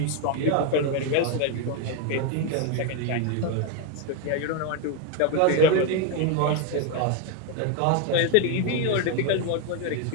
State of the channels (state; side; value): different; both; correlation 0.02